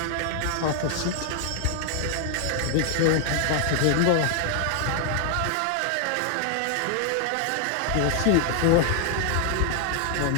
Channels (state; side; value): different; both; correlation 0.00